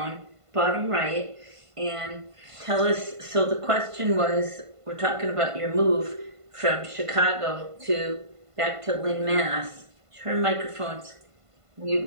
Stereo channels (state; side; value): late; left; 1.5 ms